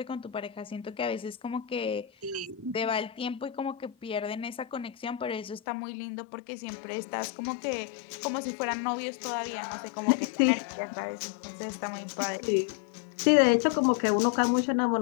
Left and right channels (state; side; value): drops out; right; at 5.6 s